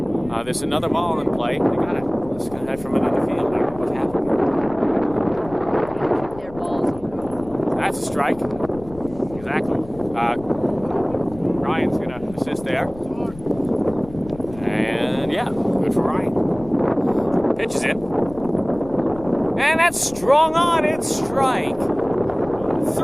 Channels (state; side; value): noise; left; rumble, 18 dB below the sound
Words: There's another ball in play. They got it. This guy from another field. I don't know what happened. Their balls. That's a strike. Exactly. Ryan's going to assist there. And yeah, good for Ryan. Pitch is in. And that's strung on. It's strike